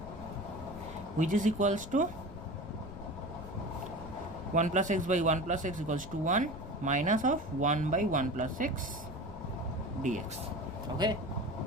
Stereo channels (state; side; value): noise; left; rumble, 12 dB below the sound